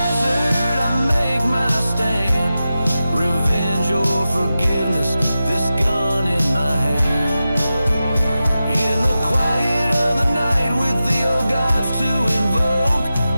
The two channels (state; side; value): inverted; both; correlation -0.93